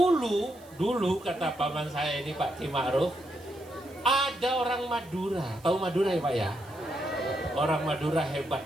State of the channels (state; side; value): noise; right; hiss, 25 dB below the sound